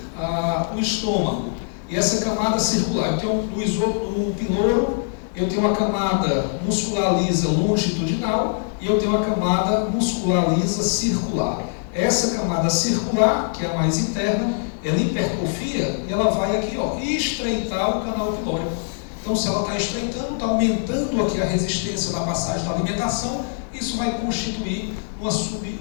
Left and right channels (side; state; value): right; silent; 64 dB below the other